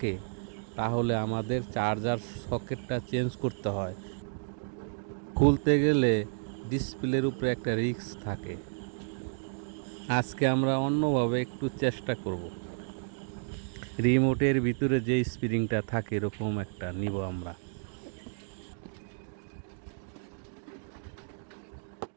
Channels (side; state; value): left; silent; digital silence